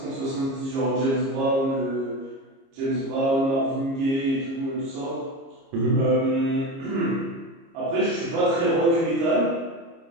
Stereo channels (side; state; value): left; late; 30 ms